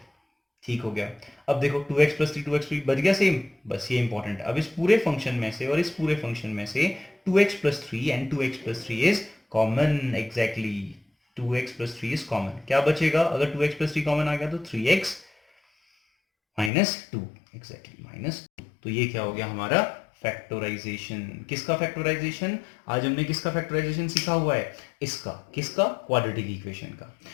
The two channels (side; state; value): right; drops out; at 16.7 s